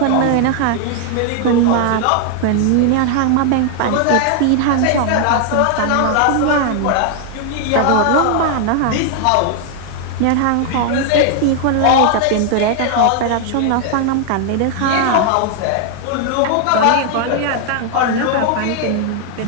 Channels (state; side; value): different; both; correlation 0.00